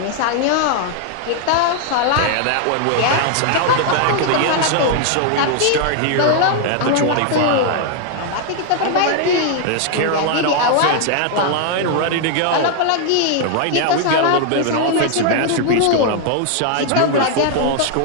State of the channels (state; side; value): different; both; correlation 0.00